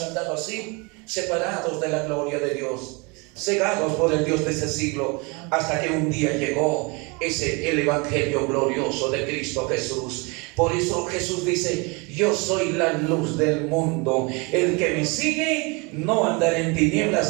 andado así, separados de la gloria de Dios, cegados por el Dios de ese siglo, hasta que un día llegó el evangelio glorioso de Cristo Jesús. Por eso Jesús dice, yo soy la luz del mundo, el que me sigue no andará en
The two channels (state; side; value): quieter; left; 29.1 dB